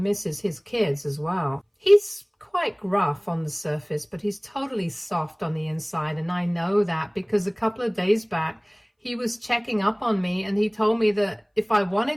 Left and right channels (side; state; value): both; identical; correlation 1.00